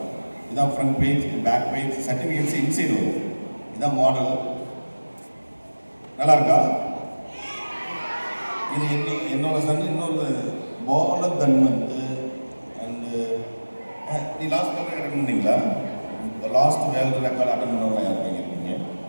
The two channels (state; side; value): inverted; both; correlation -1.00